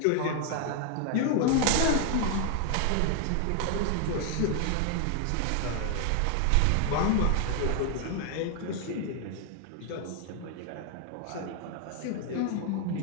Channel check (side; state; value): both; different; correlation 0.00